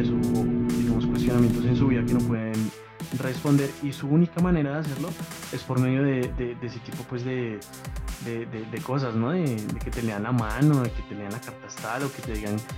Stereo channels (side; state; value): both; identical; correlation 1.00